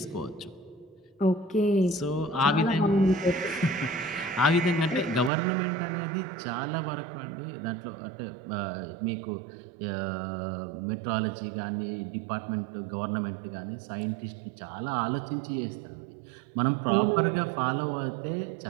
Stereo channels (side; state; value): left; drops out; at 5.3 s